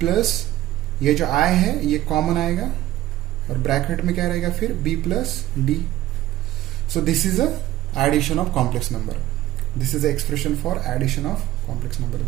ये जो I है ये कॉमन आएगा, और ब्रैकेट में क्या रहेगा फिर B plus D। So this is a addition of complex number, this is a expression for addition of complex number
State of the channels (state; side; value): quieter; left; 14.7 dB